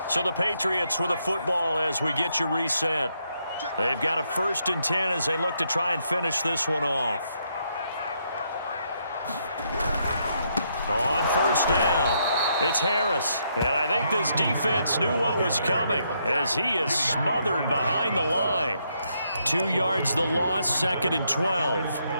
So the Patriots with a football as we get you reset. They've got a 1st and 10 as they look to try and finish this one off. On 1st down, it's Harris. And I think this defense knew what was coming as he is smothered behind the line. 2 yards the loss, 2nd and 12.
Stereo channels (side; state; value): both; inverted; correlation -0.76